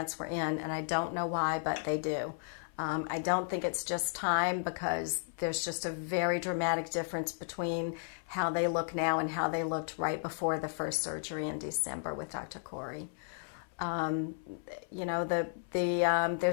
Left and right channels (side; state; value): right; silent; 55 dB below the other